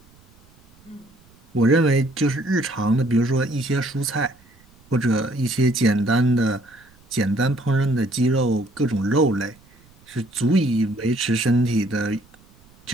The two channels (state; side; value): noise; right; rumble, 29 dB below the sound